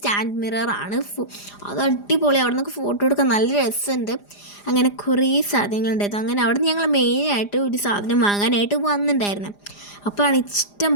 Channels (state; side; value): late; right; 4.9 ms